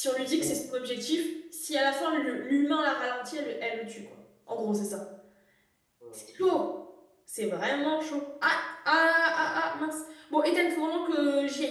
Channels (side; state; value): both; identical; correlation 1.00